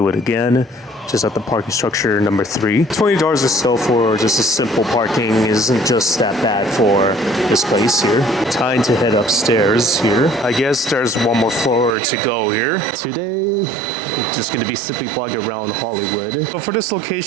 again, just at the parking structure number 3. $20 or so for just a simple parking isn't just that bad for this place here. Time to head upstairs here. I guess there's one more floor to go here. Today, just gonna be simply vlogging around Hollywood. So for this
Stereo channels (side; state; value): left; drops out; at 12.0 s